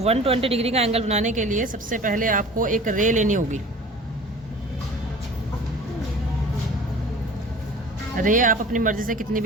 120 डिग्री का एंगल बनाने के लिए सबसे पहले आपको एक रे लेनी होगी। रे आप अपनी मर्जी से कितनी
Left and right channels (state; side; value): normal; both; correlation 0.43